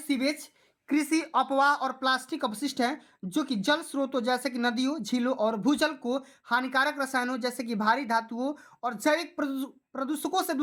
कृषि अपवाह और प्लास्टिक अपशिष्ट हैं जो कि जल स्रोतों जैसे कि नदियों, झीलों और भूजल को हानिकारक रसायनों जैसे कि भारी धातुओं और जैविक प्रदूषकों से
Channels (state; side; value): identical; both; correlation 1.00